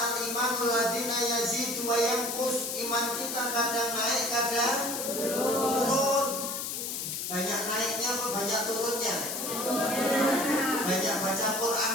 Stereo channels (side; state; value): left; noise; hiss, 4 dB below the sound